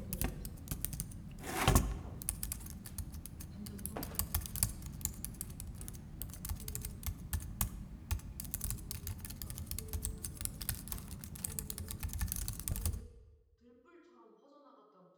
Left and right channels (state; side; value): identical; both; correlation 1.00